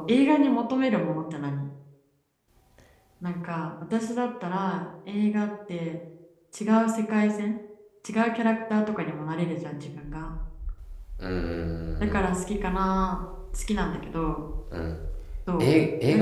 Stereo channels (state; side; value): identical; both; correlation 1.00